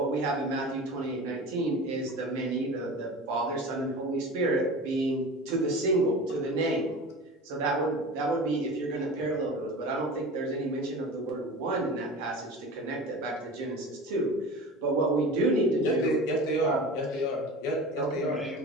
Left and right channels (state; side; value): normal; both; correlation 0.34